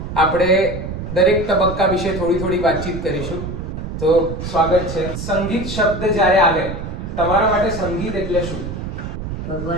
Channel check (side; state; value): right; noise; rumble, 6 dB below the sound